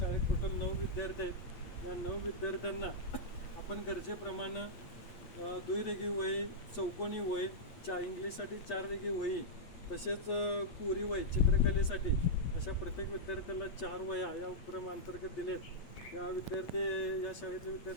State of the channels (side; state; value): right; late; 8.5 ms